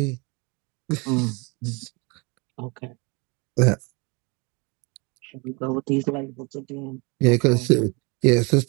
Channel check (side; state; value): left; quieter; 29.5 dB